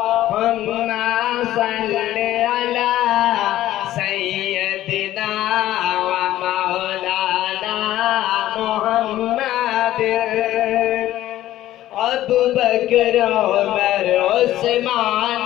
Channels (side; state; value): right; quieter; 14.0 dB